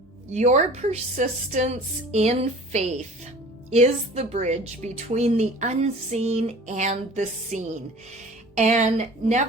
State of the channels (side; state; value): both; normal; correlation 0.44